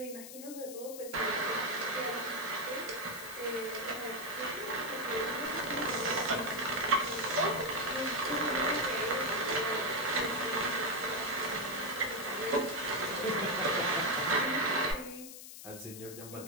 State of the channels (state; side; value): noise; left; hiss, 12 dB below the sound